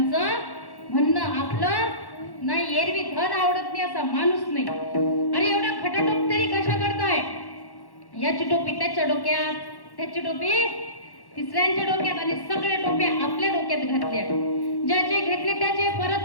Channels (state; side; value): late; right; 1.1 ms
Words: म्हणणं. आपलं नाही एरवी धन आवडत नाही असा माणूस नाही. अरे एवढा खटाटोप तरी कशा करताय? याची टोपी त्याच्या डोक्यात, त्याची टोपी तिसऱ्यांच्या डोक्यात आणि सगळे टोप्या आपल्या डोक्यात घातल्या. ज्याचे घेतले त्याचे परत